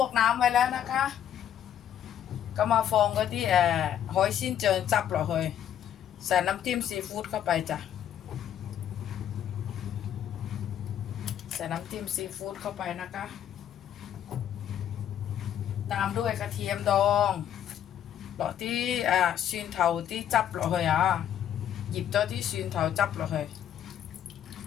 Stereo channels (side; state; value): right; quieter; 10.1 dB